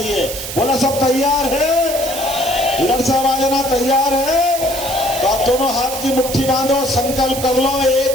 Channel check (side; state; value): right; noise; hiss, 7 dB below the sound